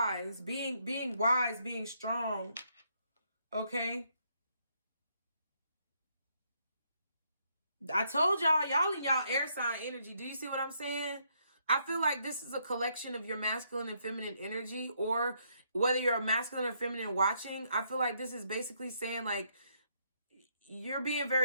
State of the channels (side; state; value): both; inverted; correlation -0.74